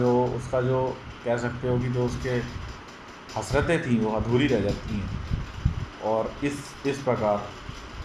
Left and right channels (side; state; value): both; identical; correlation 1.00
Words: जो कह सकते हो कि जो उसके हसरतें थी वो अधूरी रह जाती हैं। और इस प्रकार